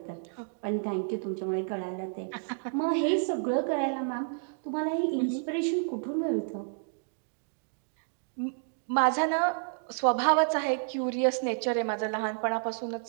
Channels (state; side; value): silent; left; digital silence